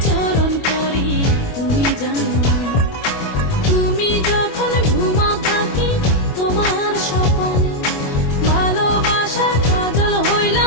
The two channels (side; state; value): right; late; 25 ms